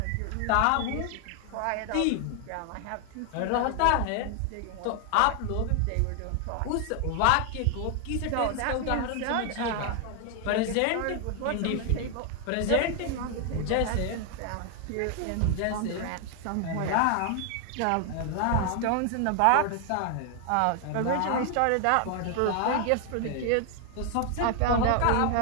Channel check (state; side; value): different; both; correlation 0.00